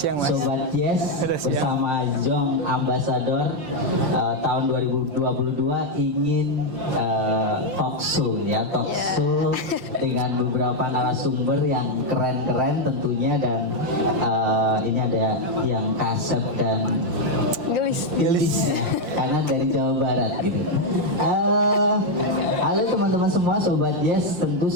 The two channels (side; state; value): left; late; 5.7 ms